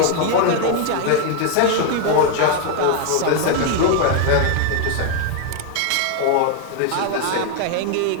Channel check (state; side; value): different; both; correlation 0.00